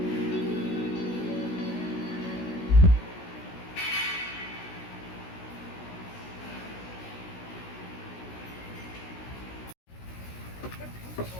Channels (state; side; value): late; right; 16 ms